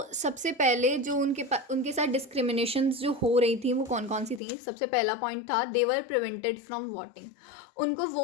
सबसे पहले जो उनके साथ डिस्क्रिमिनेशन जो हो रही थी वो कौन कौन सी थी। सबसे पहला पॉइंट था, they were prevented from voting. उनको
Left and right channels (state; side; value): drops out; right; at 4.4 s